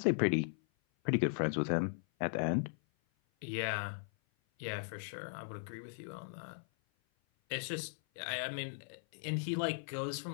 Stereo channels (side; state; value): right; silent; 53 dB below the other